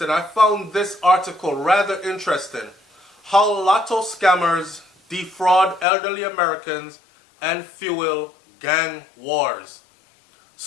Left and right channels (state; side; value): drops out; right; at 5.9 s